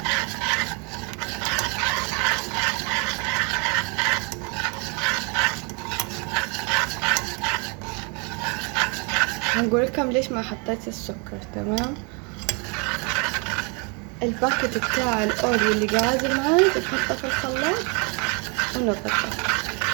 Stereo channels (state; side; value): quieter; left; 33.2 dB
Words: هنقول لكم ليش ما حطيت السكر. تمام، الباكت بتاع الاوريو اللي قاعد معاي بنحطه في الخلاط ونضربه.